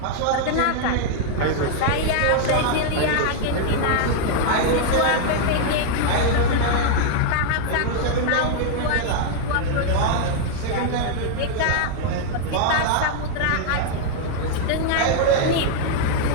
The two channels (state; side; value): different; both; correlation -0.01